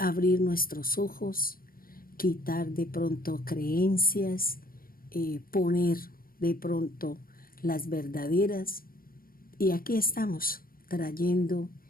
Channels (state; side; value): late; right; 0.42 ms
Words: nuestros ojos, quitar de pronto creencias, poner de pronto las verdaderas. Y aquí estamos trayendo